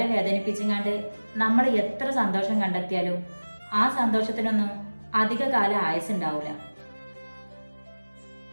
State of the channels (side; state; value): both; inverted; correlation -1.00